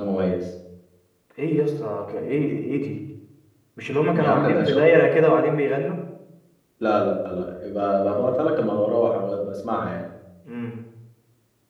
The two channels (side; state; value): both; identical; correlation 1.00